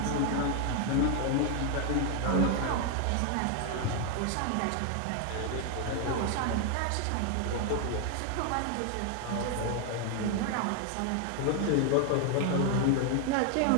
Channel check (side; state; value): both; different; correlation 0.00